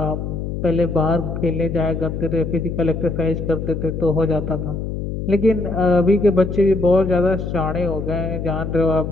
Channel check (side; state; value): left; noise; hum, 5 dB below the sound